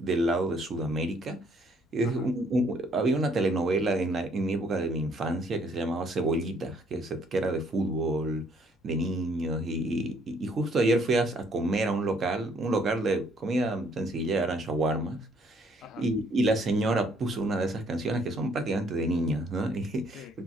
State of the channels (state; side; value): normal; both; correlation 0.65